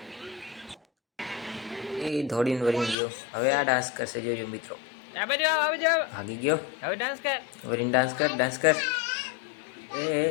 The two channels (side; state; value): right; drops out; at 3.0 s